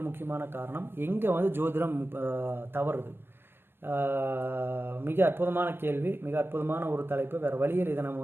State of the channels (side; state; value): left; late; 0.11 ms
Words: முக்கியமான காரணம் எங்கே வந்து ஜோதிடம் தவறுது. மிக அற்புதமான கேள்வி, மிக அற்புதமான ஒரு தலைப்பு. வேறு வழியில் இதை நம்ம